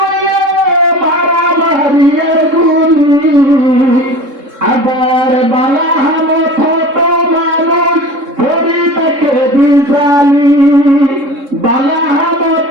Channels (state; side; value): late; left; 3.7 ms